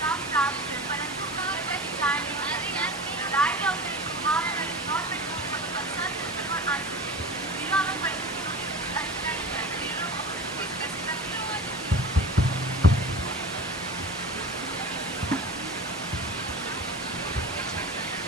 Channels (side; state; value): both; normal; correlation 0.33